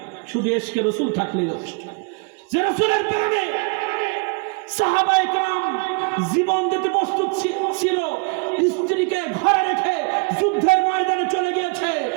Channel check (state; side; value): quieter; left; 33.6 dB